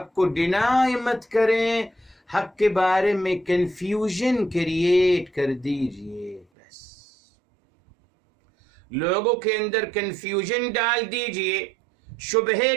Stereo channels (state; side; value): drops out; left; at 6.5 s